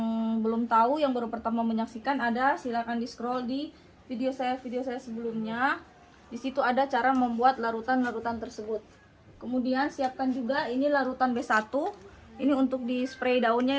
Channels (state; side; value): identical; both; correlation 1.00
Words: belum tahu, yang baru pertama menyaksikan, silakan di scroll di video saya sebelumnya. Di situ ada cara membuat larutan-larutan tersebut. Kemudian siapkan juga ini larutan B1. Ini untuk di spray